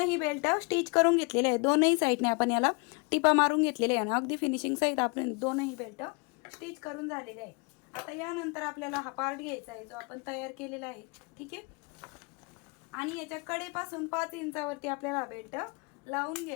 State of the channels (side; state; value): right; quieter; 31.8 dB